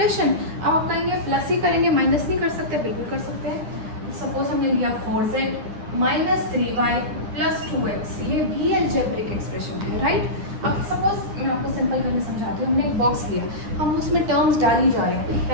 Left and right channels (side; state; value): left; late; 9.8 ms